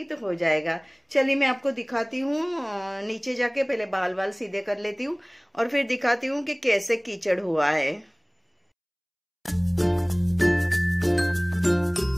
तो हो जाएगा। चलिए मैं आपको दिखाती हूँ। नीचे जाके पहले बाल बाल सीधे कर लेती हूँ और फिर दिखाती हूँ कि कैसे कीचड़ हुआ है।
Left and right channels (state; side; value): identical; both; correlation 1.00